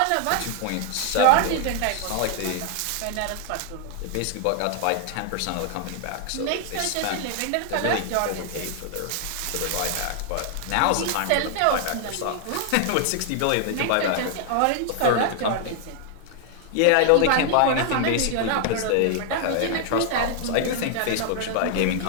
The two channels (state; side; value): different; both; correlation 0.00